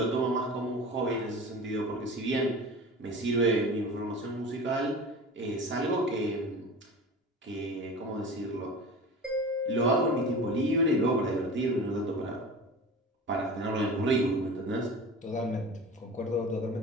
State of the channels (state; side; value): normal; both; correlation 0.35